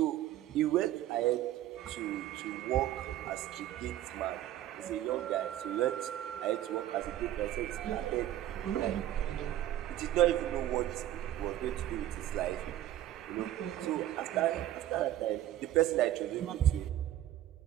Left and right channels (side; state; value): left; quieter; 13.0 dB